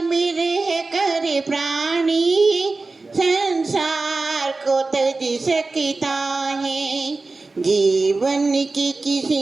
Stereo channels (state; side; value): quieter; left; 3.6 dB